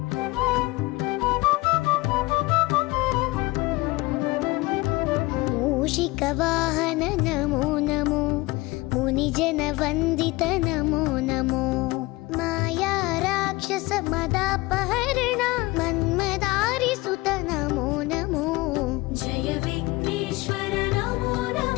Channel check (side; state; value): right; quieter; 21.8 dB